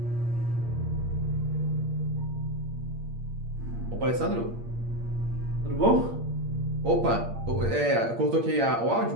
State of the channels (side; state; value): left; late; 8.6 ms